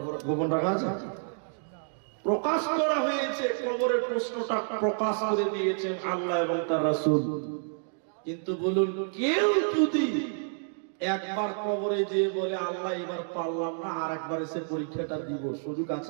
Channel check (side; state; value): left; silent; digital silence